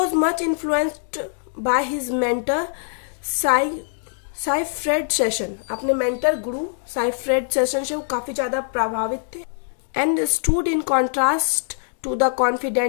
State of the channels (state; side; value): silent; right; digital silence